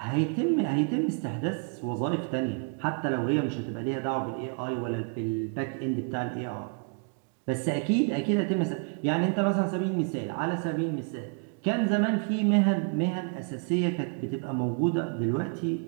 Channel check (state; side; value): quieter; left; 38.8 dB